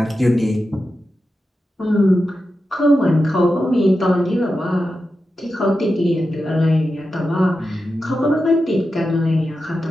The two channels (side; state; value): both; normal; correlation 0.90